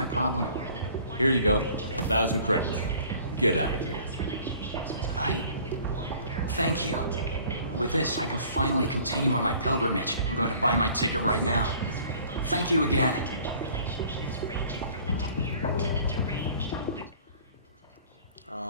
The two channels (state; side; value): inverted; both; correlation -0.51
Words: problem. Here you go. 1,000 credits. Get out of here. Thank you. With this, I can finally continue on my pilgrimage. I'm going to buy my ticket right now. Thank you again.